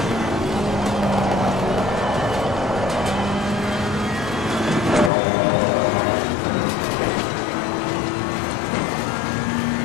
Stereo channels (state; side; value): drops out; right; at 5.1 s